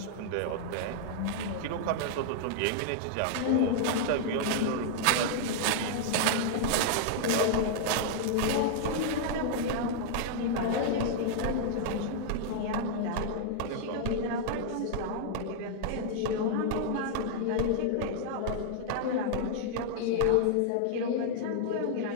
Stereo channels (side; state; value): both; different; correlation -0.01